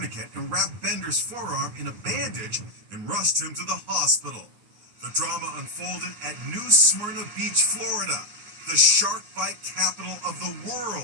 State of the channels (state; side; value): late; left; 9.5 ms